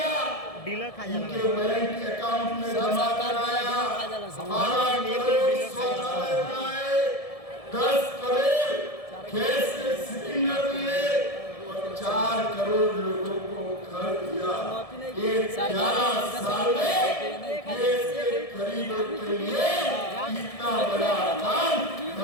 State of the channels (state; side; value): late; right; 1.7 ms